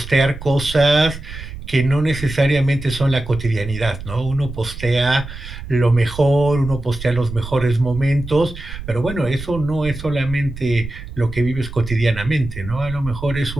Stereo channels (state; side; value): noise; right; rumble, 11 dB below the sound